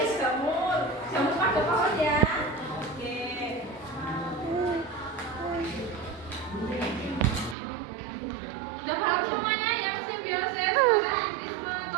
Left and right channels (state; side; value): drops out; left; at 7.6 s